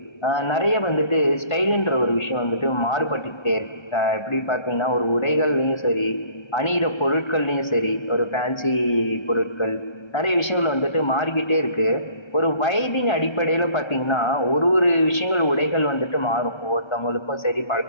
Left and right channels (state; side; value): late; right; 1.3 ms